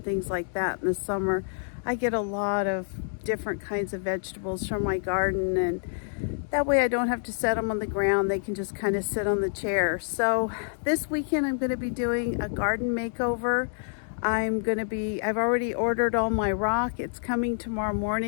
things like that in the summer. I get a lot of different kinds of vegetables from my garden, and that way I don't have to set them on the ground. They can just kind of sit on the chair. So this weekend I'm going to be doing a garden makeover. I've already ordered all my rock. It's coming tomorrow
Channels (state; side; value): silent; right; digital silence